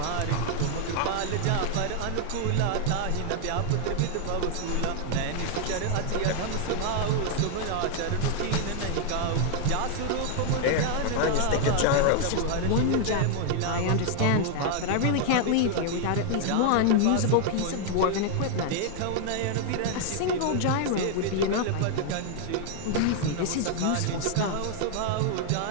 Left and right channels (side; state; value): both; different; correlation 0.00